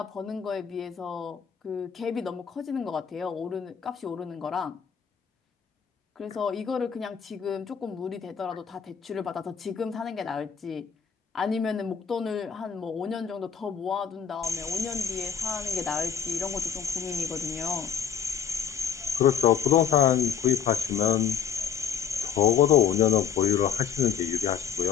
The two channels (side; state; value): right; quieter; 7.9 dB